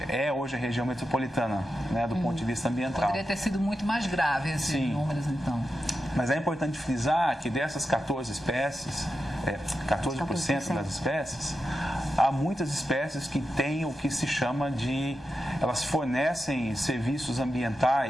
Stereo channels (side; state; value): both; normal; correlation 0.89